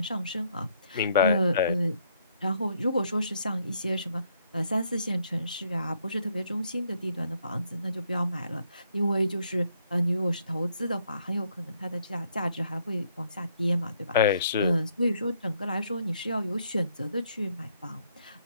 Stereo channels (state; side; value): inverted; both; correlation -0.69